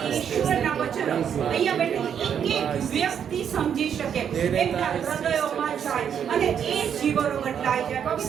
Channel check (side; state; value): left; quieter; 8.3 dB